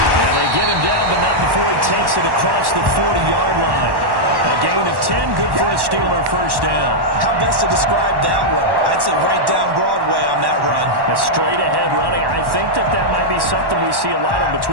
they get him down, but not before he takes it across the 40-yard line. A gain of 10, good for a Steeler first down. How best to describe that one? I'd say right down Broadway on that run. A straight-ahead running. I think that might be something we see a lot of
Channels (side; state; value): left; late; 1.1 ms